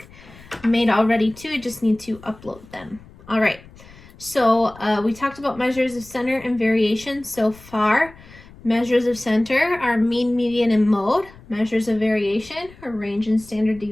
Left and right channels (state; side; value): noise; left; rumble, 22 dB below the sound